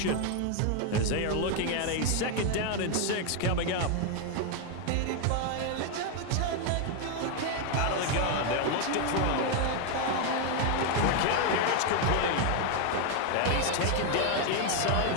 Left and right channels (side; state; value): both; different; correlation 0.01